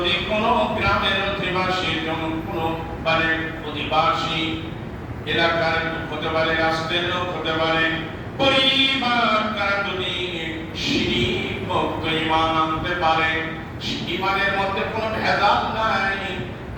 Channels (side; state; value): both; identical; correlation 1.00